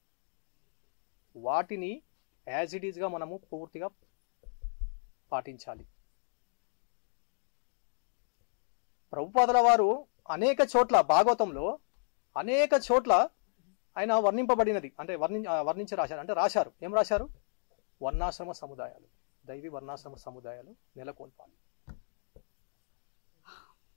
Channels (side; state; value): right; silent; digital silence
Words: వాటిని యాజ్ ఇట్ ఈజ్గా మనము పూర్తిగా పాటించాలి. ప్రభుపాదుల వారు అనేక చోట్ల భాగవతంలో అనేక చోట్ల ఆయన వర్ణింపబడినది, అంటే వర్ణించి రాశారు. అంటే రాశారు, ఏం రాశారు? వర్ణాశ్రమ సముదాయాలు, దైవీ వర్ణాశ్రమ సముదాయాలు నెలకొల్పాలి.